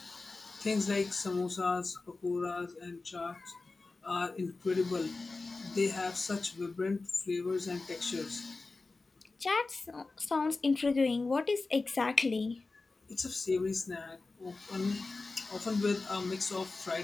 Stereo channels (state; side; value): quieter; right; 3.6 dB